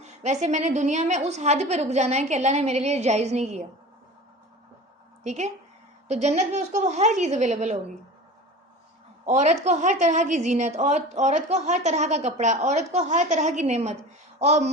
ویسے میں نے دنیا میں اس حد پہ رک جانا ہے کہ اللہ نے میرے لیے جائز نہیں کیا، ٹھیک ہے؟ تو جنت میں اس کو وہ ہر چیز اویلیبل ہوگی، عورت کو ہر طرح کی زینت، اور عورت کو ہر طرح کا کپڑا، عورت کو ہر طرح کی نعمت، اور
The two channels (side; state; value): both; normal; correlation 0.35